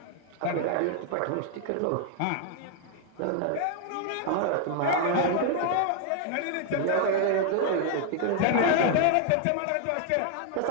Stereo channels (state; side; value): different; both; correlation 0.00